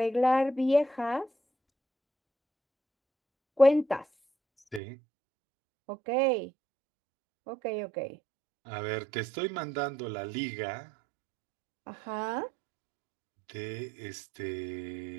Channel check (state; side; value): drops out; left; at 4.8 s